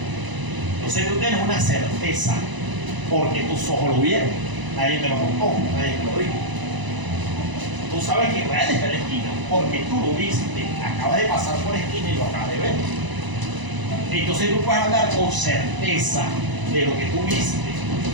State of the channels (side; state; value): left; late; 1.0 ms